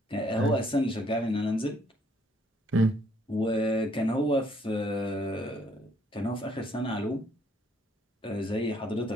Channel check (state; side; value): normal; both; correlation 0.66